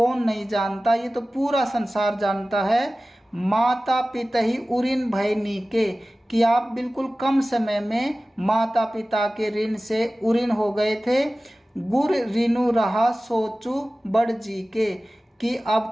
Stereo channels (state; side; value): normal; both; correlation 0.97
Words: नहीं जानता, ये तो पूरा संसार जानता है। माता पिता ही उऋण भय नीके, कि आप बिल्कुल कम समय में माता पिता के ऋण से उऋण हो गए थे। गुर ऋणु रहा सोचू बड़ जी के, कि